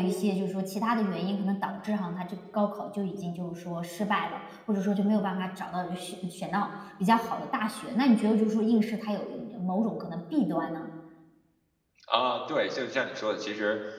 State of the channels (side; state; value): both; identical; correlation 1.00